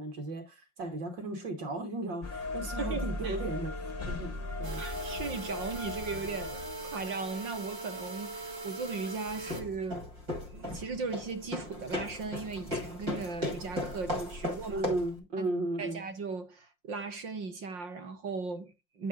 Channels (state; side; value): late; left; 5.6 ms